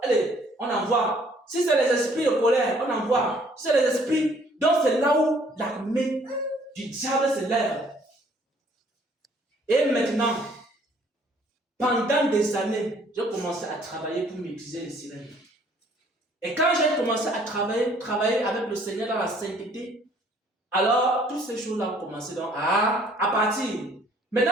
allez, on envoie. Si c'est les esprits de colère, on envoie. Si c'est les esprits, donc c'est là où l'armée du diable se lève. Et maintenant, pendant des années, j'ai commencé à travailler pour maîtriser les sirènes. Et quand j'ai commencé à travailler avec le Seigneur dans la sainteté, alors, toutes ces choses-là ont commencé donc à partir.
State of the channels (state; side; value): normal; both; correlation 0.60